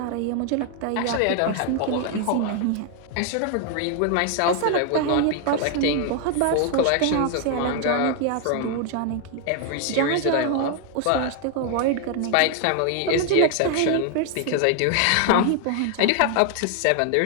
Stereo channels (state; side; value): different; both; correlation 0.00